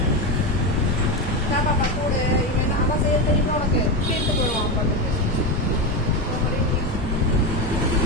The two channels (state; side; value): normal; both; correlation 0.15